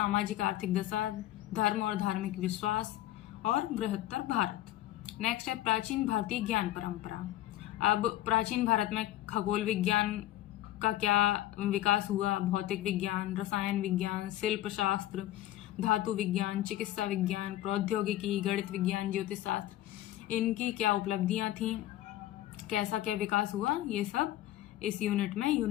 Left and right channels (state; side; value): quieter; right; 14.4 dB